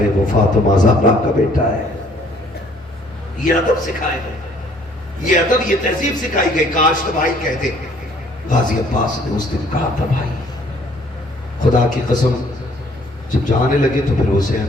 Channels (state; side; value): normal; both; correlation 0.60